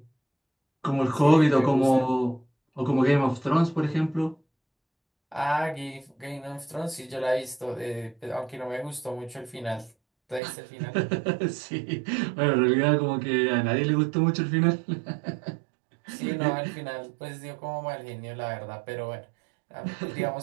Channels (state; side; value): drops out; left; at 10.4 s